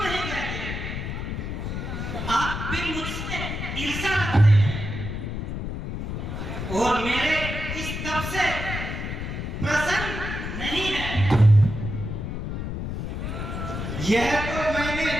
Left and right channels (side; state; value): left; noise; rumble, 5 dB below the sound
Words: कहते? आप भी मुझसे ईर्ष्या रखते हैं और मेरे इस तप से प्रसन्न नहीं है। यह तो मैंने